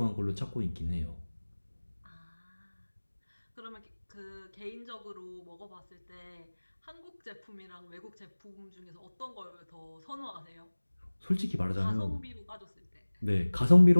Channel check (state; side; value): inverted; both; correlation -1.00